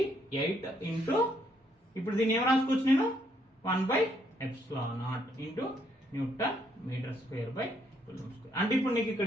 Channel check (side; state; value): both; normal; correlation 0.72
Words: ఇంటూ ఇప్పుడు దీన్ని ఏం రాసుకోవచ్చు నేను 1/ε0 into newton metre square by coulomb square. అంటే ఇప్పుడు నీకు ఇక్కడ